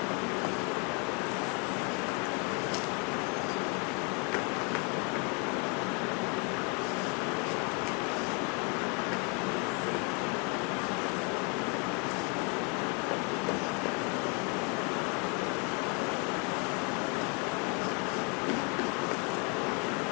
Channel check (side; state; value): right; quieter; 34.0 dB